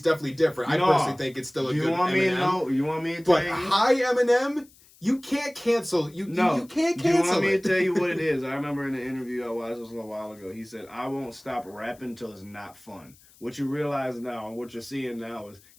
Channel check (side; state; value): left; noise; hiss, 27 dB below the sound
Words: definitely different. I personally think it's still a good Eminem. You want me to tell you? But high Eminem. You can't cancel. You can't cancel. You want me to tell you what it is? I remember in the interview I watched this a little while ago. He said, "I won't stop rapping until it's not fun." What you realize now, and what you're seeing now, is